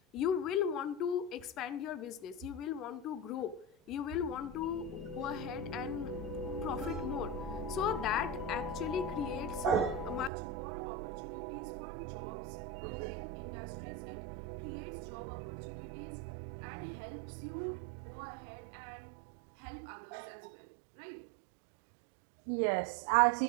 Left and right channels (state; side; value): drops out; left; at 10.3 s